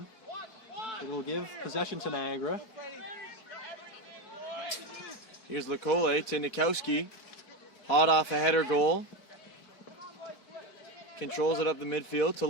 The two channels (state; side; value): late; right; 4.6 ms